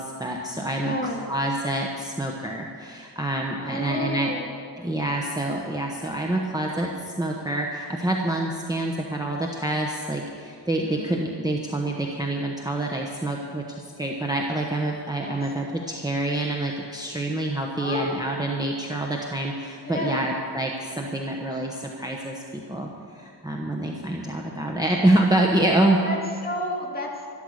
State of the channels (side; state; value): both; normal; correlation 0.54